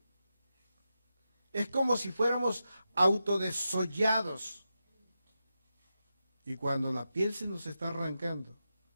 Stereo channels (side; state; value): both; inverted; correlation -0.89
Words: Es como si fuéramos autodesollados. Y cuando la piel se nos está arrancando,